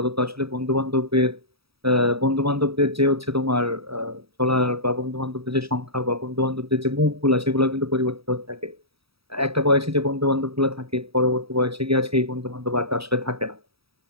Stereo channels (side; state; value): left; late; 0.77 ms